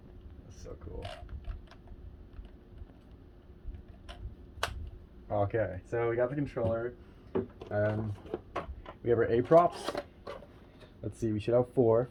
That's so cool. Okay, so we got the controller. We have our A props. Let's see, we should have four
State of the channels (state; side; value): identical; both; correlation 1.00